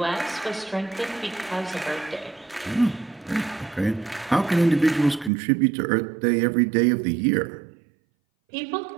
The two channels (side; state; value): left; drops out; at 5.3 s